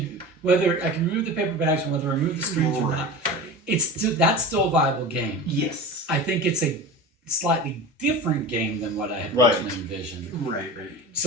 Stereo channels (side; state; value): both; normal; correlation 0.31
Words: paper bags and whether I remove the screens or not. That's still a viable game. Yes. I think it's a slightly different game than what I had Right. originally envisioned. Right.